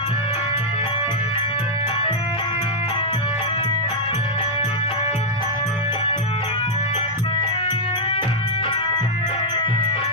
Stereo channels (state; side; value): normal; both; correlation -0.05